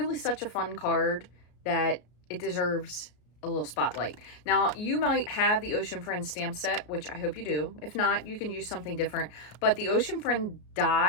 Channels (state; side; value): late; right; 34 ms